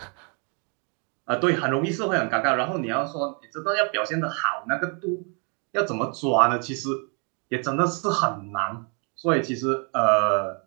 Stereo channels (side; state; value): left; quieter; 37.0 dB